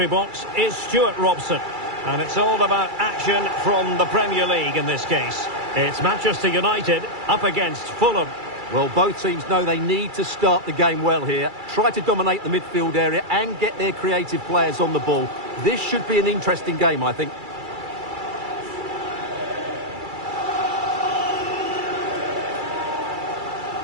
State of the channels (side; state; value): left; late; 2.3 ms